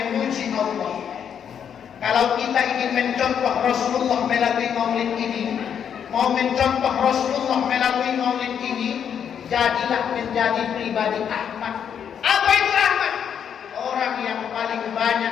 Allah. Kalau kita ingin mencontoh Rasulullah melalui maulid ini, mau mencontoh Rasulullah melalui maulid ini, jadilah menjadi pribadi Ahmad. Apa itu Ahmad? Orang yang paling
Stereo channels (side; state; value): right; quieter; 8.2 dB